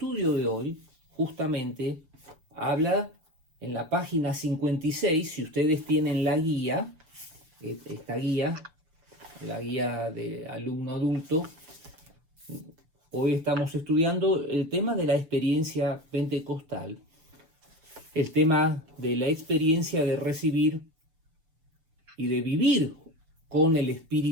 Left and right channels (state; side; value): late; left; 6.9 ms